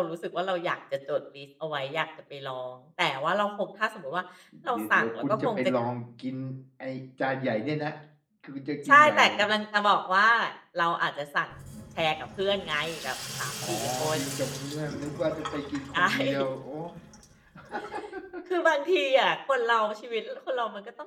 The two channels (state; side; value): identical; both; correlation 1.00